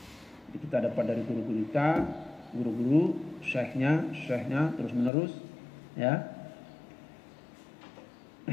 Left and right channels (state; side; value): drops out; right; at 5.1 s